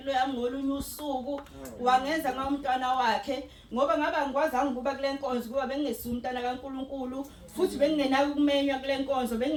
yami ngolunye usuku wangenza ngomntwana wakhe ngoba ngaba ngikwazanga ukuba kule nkonzo kuba bengingesi umntwana kaNkulunkulu futhi bengingenaki ukumenywa kule nkonzo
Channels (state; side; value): identical; both; correlation 1.00